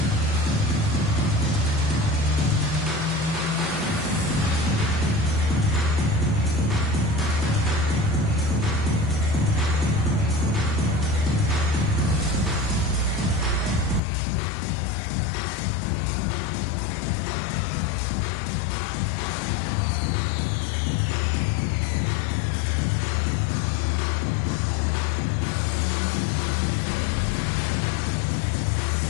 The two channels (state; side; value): drops out; right; at 14.0 s